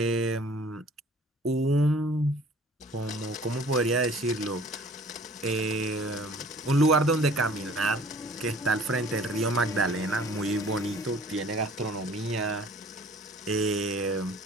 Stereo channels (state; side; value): normal; both; correlation 0.51